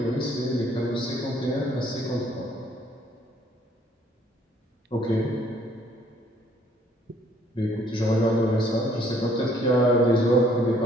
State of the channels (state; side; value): normal; both; correlation 0.62